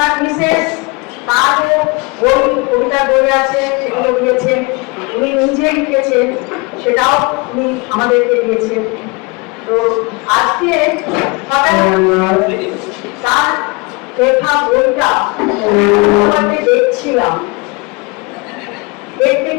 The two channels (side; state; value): right; quieter; 27.8 dB